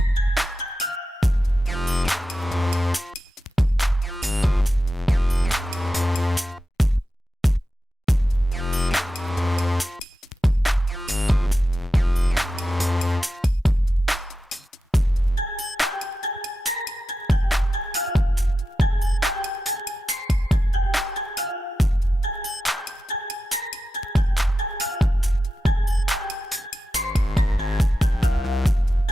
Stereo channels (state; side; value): normal; both; correlation 0.91